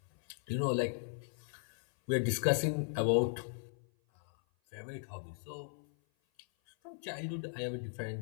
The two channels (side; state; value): right; silent; 53 dB below the other